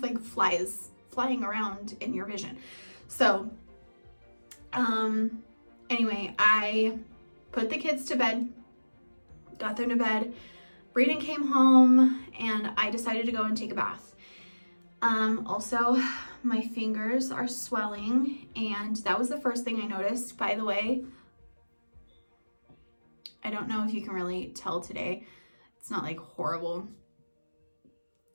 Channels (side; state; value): both; inverted; correlation -1.00